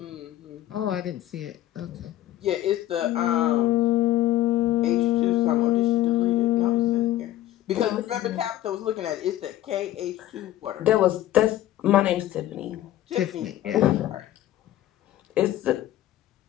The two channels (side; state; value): right; quieter; 13.7 dB